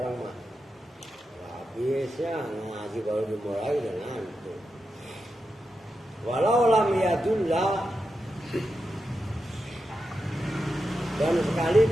mah. Biasanya ngaji baru dimulai dan ngantuk. Walau lam yadullah dan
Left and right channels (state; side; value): normal; both; correlation 0.88